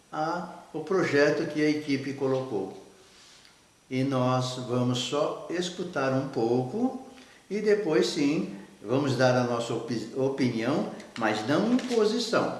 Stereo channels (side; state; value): both; identical; correlation 1.00